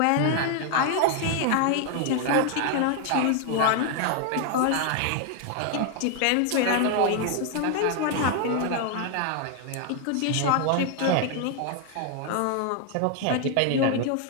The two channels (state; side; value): different; both; correlation 0.00